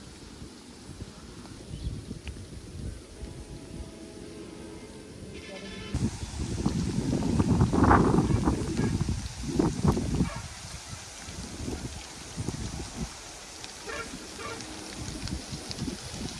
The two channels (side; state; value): both; identical; correlation 1.00